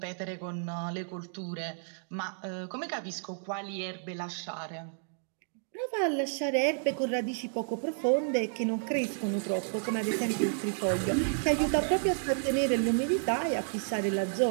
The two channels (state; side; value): silent; left; digital silence